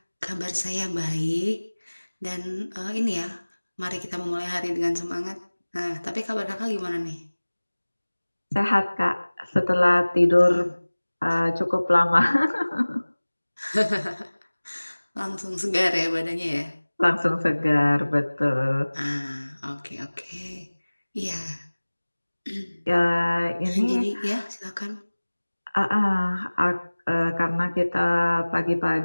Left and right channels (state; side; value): inverted; both; correlation -1.00